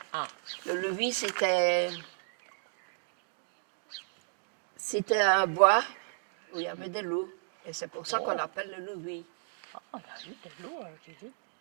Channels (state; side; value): silent; left; digital silence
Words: Ah. Le Louis, c'était un bois où il y avait des loups. Et c'est pour ça qu'on l'appelle le Louis. Ah, il y a eu des loups, j'ai dit.